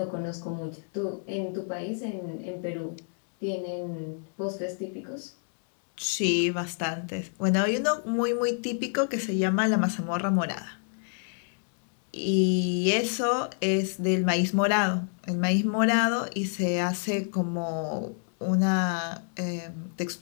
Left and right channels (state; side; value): silent; right; 59 dB below the other